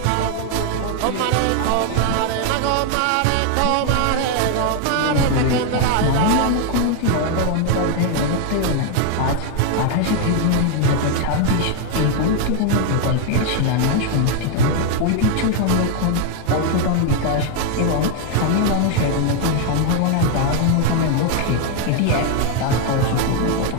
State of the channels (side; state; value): both; different; correlation 0.01